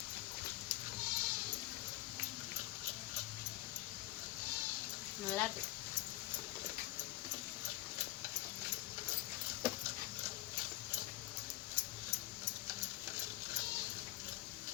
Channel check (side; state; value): right; quieter; 17.1 dB